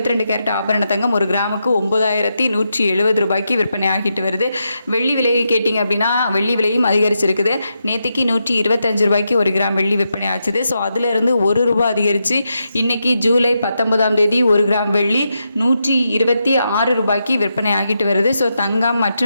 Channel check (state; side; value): inverted; both; correlation -0.85